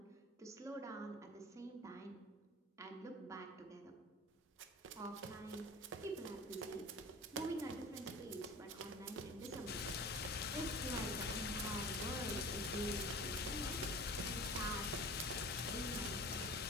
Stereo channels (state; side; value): normal; both; correlation 0.39